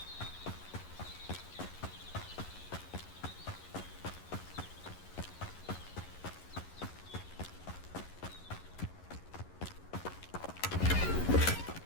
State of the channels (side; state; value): right; late; 11 ms